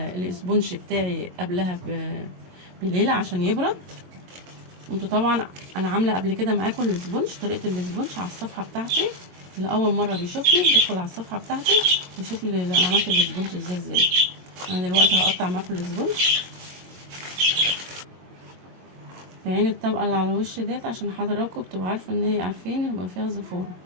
الاسبونج بتاعي قبلها بليلة عشان يبرد. وانتوا طبعا انا عاملة قبل كده معاكم الاسبونج، طريقة الاسبونج على الصفحة بتاعتي. اللي اول مرة بيشوفني يدخل على الصفحة بتاعتي يشوف انا عملت الاسبونج ازاي. انا دلوقتي هقطع معاكم الاسبونج في عين الطبقة اللي على الوش ديت، عشان حضراتكم بتبقوا عارفة ان هي عارفين يبقى فيها زفارة.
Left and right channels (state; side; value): late; left; 22 ms